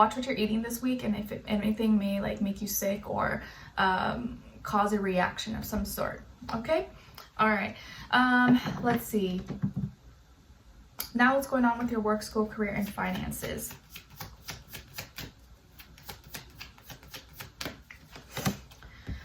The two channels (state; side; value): identical; both; correlation 1.00